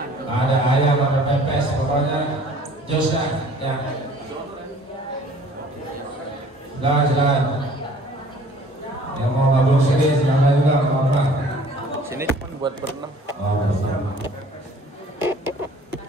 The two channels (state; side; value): normal; both; correlation 0.52